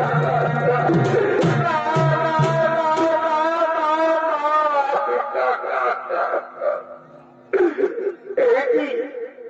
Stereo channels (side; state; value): both; identical; correlation 1.00